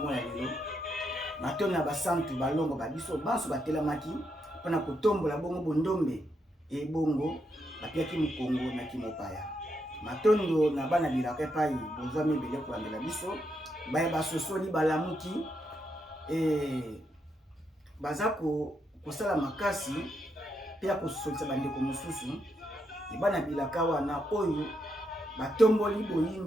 lelo matondo na basantu balongo babiso banso batelamaki mpona kotombola bongo bondombe ebongo bapiaki mukongo na kimopaya matondo na bana bilaka epai bozwa mibele kolandela biso baye basosoli balamuki baza kosala makasi mpe ya kosolisa bandeko mosusu ebana bilaka wana oyo batomboli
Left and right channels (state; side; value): normal; both; correlation 0.80